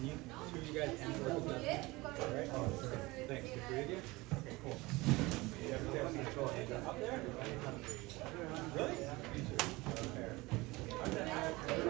you, two of you guys handle it? Alright? Thanks. The three of you? Okay, cool. You have Dale's control. Up there? Really?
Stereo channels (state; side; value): quieter; left; 22.0 dB